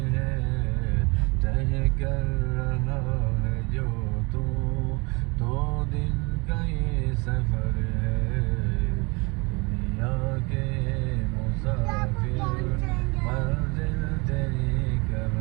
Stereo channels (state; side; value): quieter; left; 28.0 dB